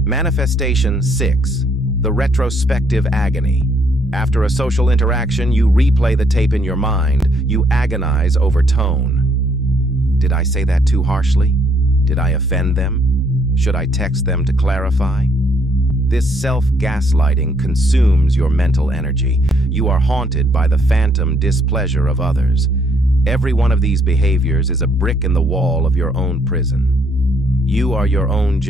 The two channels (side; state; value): both; normal; correlation 0.68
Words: Manifestation 6. The retrospective agony. After a social interaction, you replay the tape in your mind. You agonize over tone. Did I say that too harshly? Did I offend them? Should I text them to clarify? This self-gaslighting consumes your mental energy. You are haunted by the phantom displeasure of others. Every one of these behaviors is a brick in the wall of your own prison. You are your own